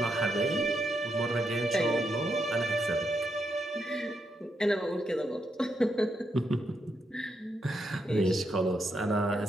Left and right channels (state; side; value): normal; both; correlation 0.81